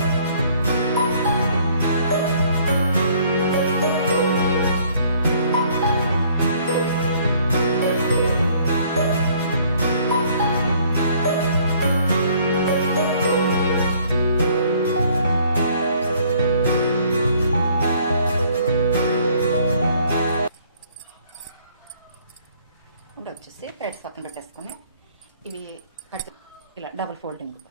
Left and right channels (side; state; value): both; inverted; correlation -0.61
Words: ఇప్పుడు వచ్చేసి థ్రెడ్స్ పక్కన పెట్టేసుకొని ఇవి కట్ ఇలా డబుల్ ఫోల్డింగ్